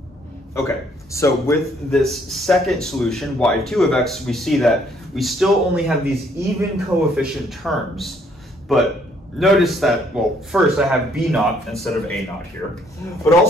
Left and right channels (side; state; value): both; normal; correlation 0.66